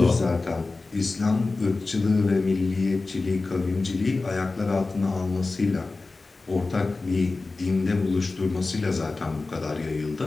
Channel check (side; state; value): right; quieter; 3.6 dB